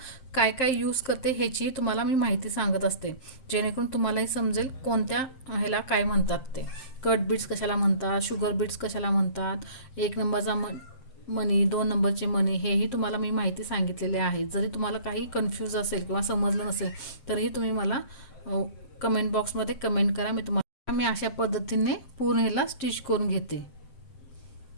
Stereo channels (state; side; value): late; right; 7.7 ms